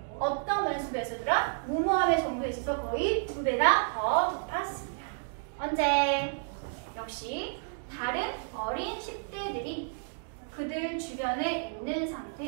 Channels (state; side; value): silent; left; digital silence